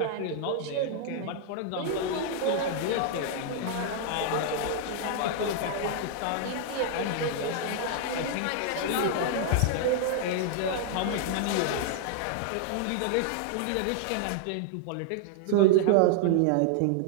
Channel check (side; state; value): both; different; correlation -0.01